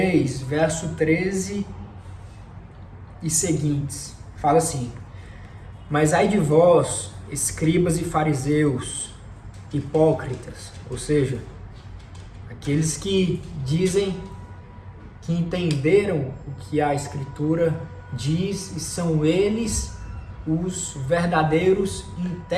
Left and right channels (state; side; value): identical; both; correlation 1.00